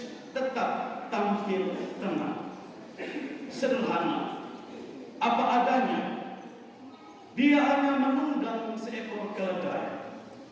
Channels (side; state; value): both; identical; correlation 1.00